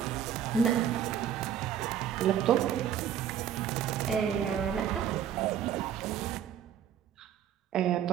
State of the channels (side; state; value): left; quieter; 9.3 dB